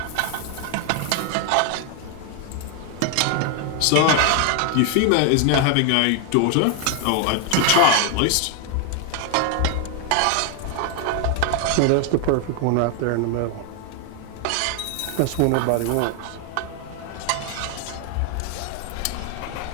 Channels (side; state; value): both; different; correlation 0.00